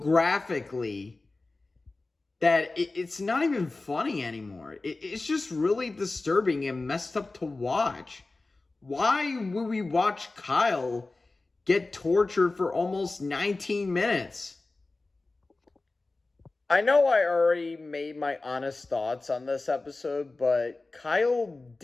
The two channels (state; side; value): quieter; right; 3.3 dB